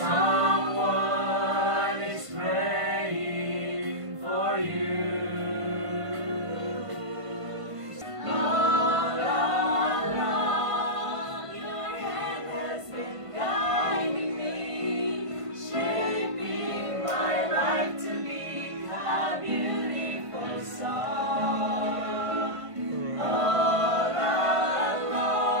is praying for you. All along, your hand has been guiding me, shaping my life to be a beautiful song. All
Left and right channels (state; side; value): late; left; 1.5 ms